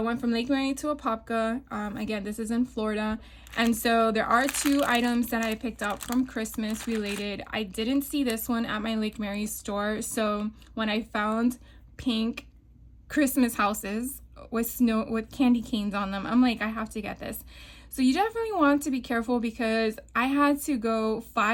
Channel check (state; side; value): identical; both; correlation 1.00